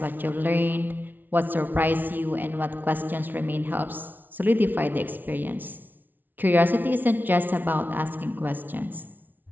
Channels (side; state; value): left; late; 0.087 ms